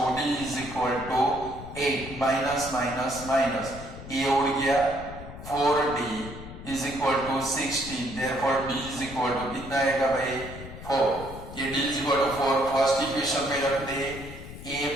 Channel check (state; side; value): noise; left; rumble, 13 dB below the sound